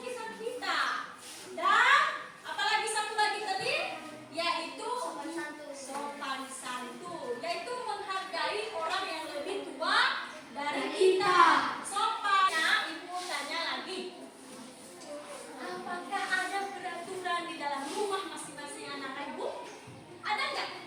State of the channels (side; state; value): both; identical; correlation 1.00